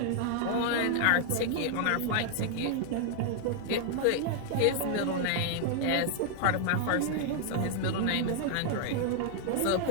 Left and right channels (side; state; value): both; different; correlation 0.00